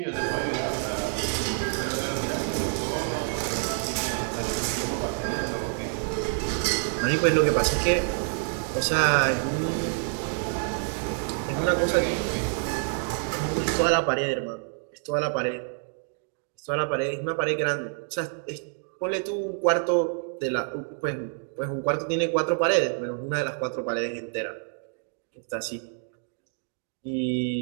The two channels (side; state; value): left; silent; 60 dB below the other